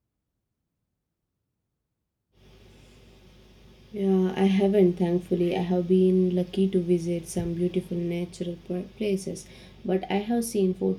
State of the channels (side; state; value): both; identical; correlation 1.00